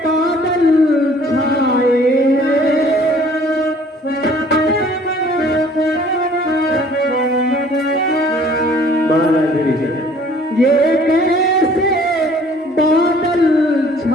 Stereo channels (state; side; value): normal; both; correlation 0.55